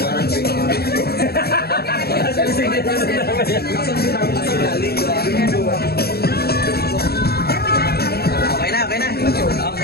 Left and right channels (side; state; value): right; late; 0.46 ms